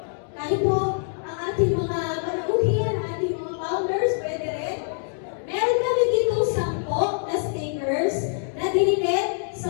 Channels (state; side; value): silent; right; digital silence